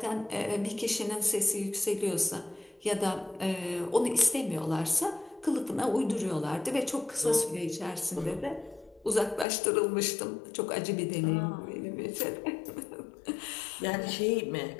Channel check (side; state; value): right; drops out; at 9.5 s